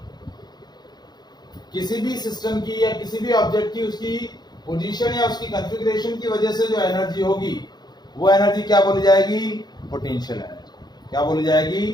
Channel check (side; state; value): right; late; 0.20 ms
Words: किसी भी सिस्टम की या किसी भी ऑब्जेक्ट की उसकी पोजीशन या उसकी कॉन्फ़िगरेशन की वजह से जो एनर्जी होगी वो एनर्जी क्या बोली जाएगी? Potential energy. क्या बोली जाएगी?